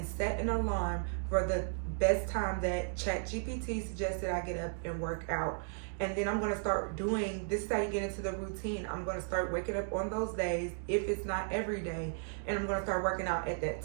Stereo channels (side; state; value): left; silent; digital silence